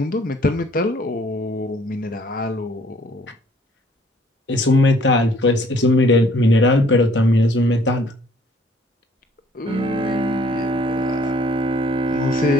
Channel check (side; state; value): both; normal; correlation 0.59